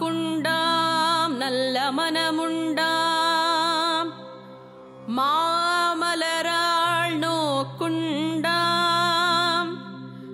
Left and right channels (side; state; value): both; identical; correlation 1.00